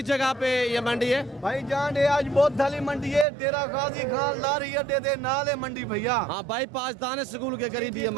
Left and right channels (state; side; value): drops out; left; at 3.2 s